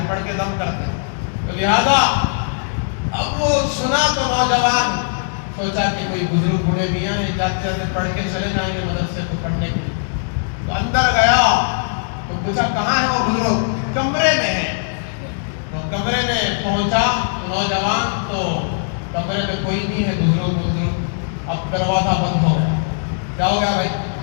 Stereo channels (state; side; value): silent; right; digital silence